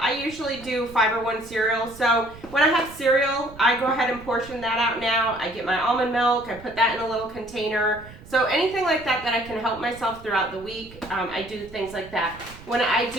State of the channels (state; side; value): noise; right; rumble, 18 dB below the sound